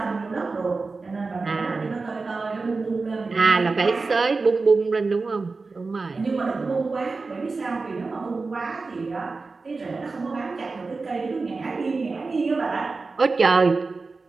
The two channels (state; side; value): quieter; left; 4.0 dB